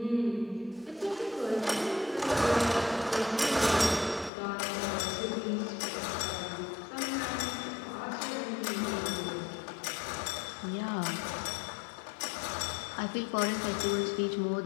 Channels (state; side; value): drops out; right; at 4.3 s